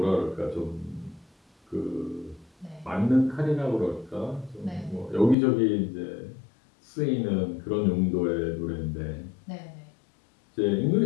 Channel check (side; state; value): right; drops out; at 5.4 s